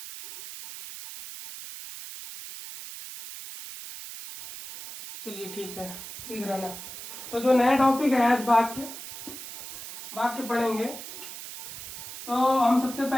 चलिए ठीक है, सीख रहना। तो जो नया टॉपिक है आज वाक्य पढ़ेंगे। तो हम सबसे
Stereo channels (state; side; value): noise; right; hiss, 11 dB below the sound